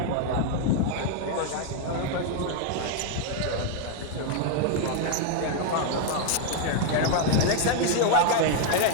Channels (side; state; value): both; different; correlation 0.00